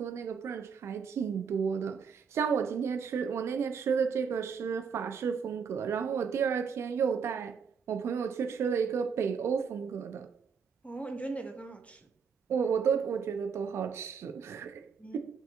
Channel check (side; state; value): left; quieter; 6.3 dB